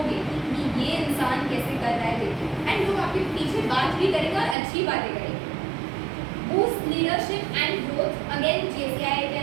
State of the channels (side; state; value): left; drops out; at 4.5 s